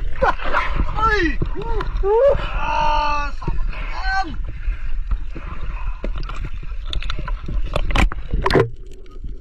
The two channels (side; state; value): both; identical; correlation 1.00